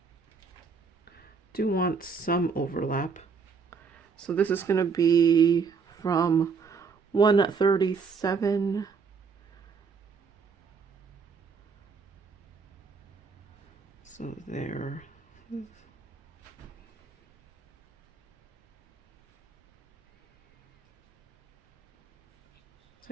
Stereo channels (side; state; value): left; quieter; 5.4 dB